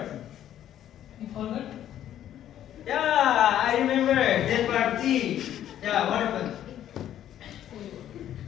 You forgot? Yeah, I remember that party. Yeah, what happened?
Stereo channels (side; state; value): right; quieter; 11.3 dB